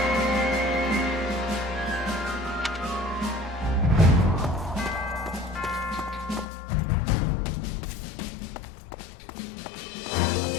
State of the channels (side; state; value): right; drops out; at 6.5 s